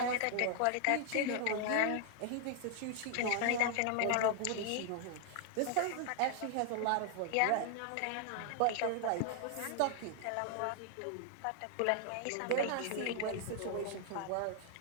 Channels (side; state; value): both; different; correlation 0.00